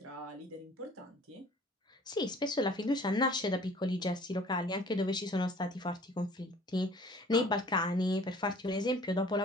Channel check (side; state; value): both; normal; correlation 0.51